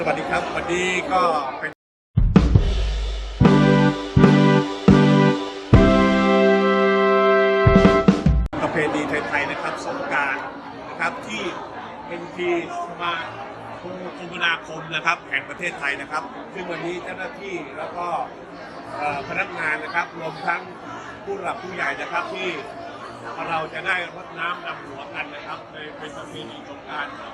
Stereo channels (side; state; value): both; identical; correlation 1.00